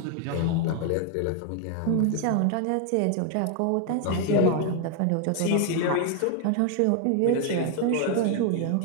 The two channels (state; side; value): different; both; correlation 0.00